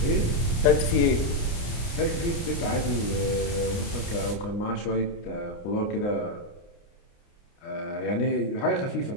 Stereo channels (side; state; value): right; late; 29 ms